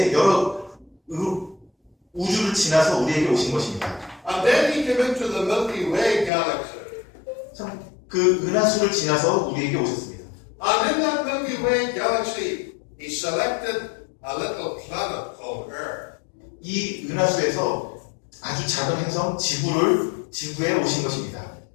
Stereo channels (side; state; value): right; drops out; at 6.3 s